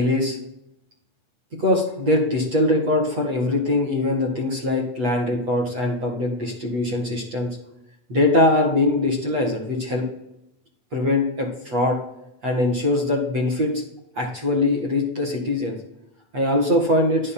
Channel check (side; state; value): left; late; 8.1 ms